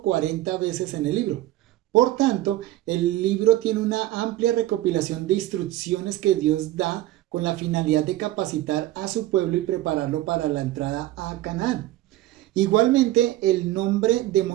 veces en el libro. Por tanto, el libro tiene una amplia recopilación de instrucciones que Dios da con la finalidad de capacitar a su pueblo y prepararlo para la entrada a Canaán. Igualmente, el nombre de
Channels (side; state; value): left; quieter; 15.2 dB